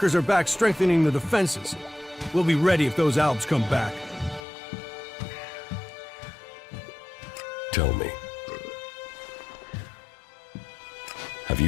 are back strengthening the defenses. We'll be ready if those Alps come back. Tell me. Have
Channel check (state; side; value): drops out; right; at 4.4 s